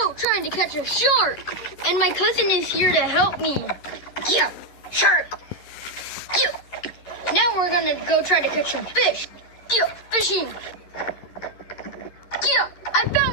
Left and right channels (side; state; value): right; late; 11 ms